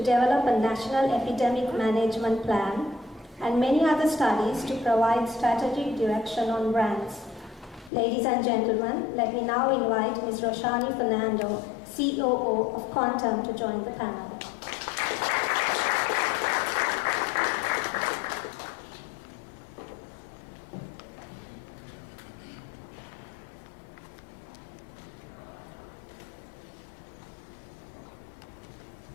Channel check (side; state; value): right; drops out; at 7.9 s